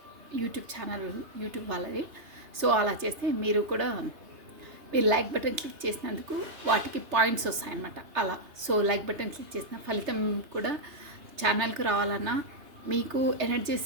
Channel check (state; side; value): late; left; 3.3 ms